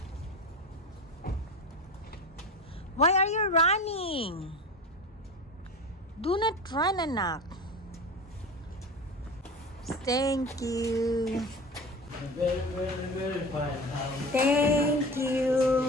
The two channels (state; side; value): normal; both; correlation 0.31